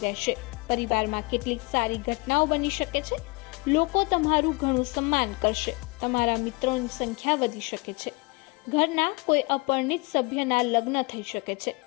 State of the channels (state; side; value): quieter; right; 27.6 dB